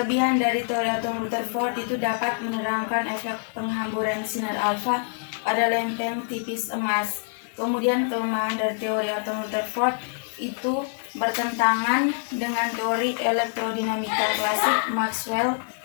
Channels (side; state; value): right; silent; 61 dB below the other